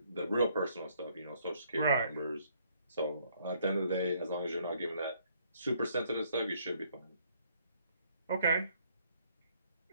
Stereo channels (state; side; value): inverted; both; correlation -0.66